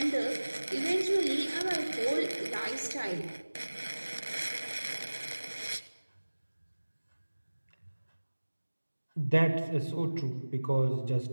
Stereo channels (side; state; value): both; inverted; correlation -1.00